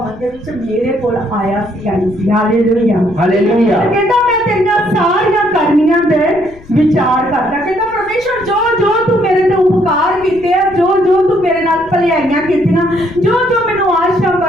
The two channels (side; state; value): left; noise; rumble, 23 dB below the sound